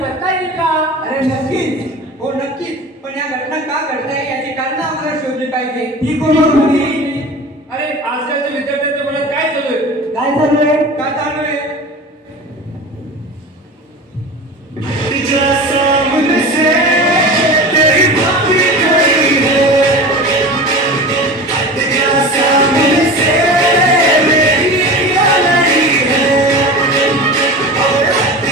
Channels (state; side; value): normal; both; correlation 0.33